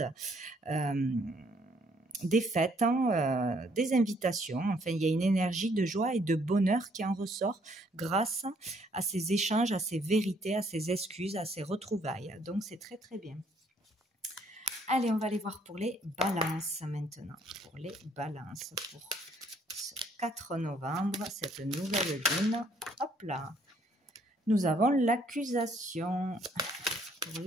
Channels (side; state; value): both; normal; correlation 0.66